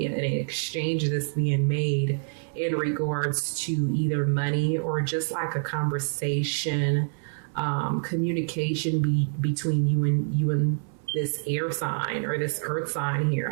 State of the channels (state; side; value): silent; left; 60 dB below the other